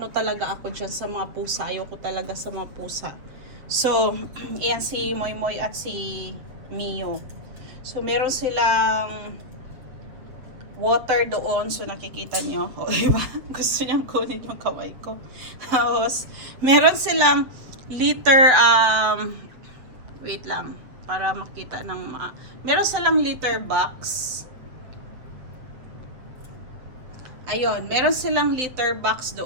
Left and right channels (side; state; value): left; late; 7.5 ms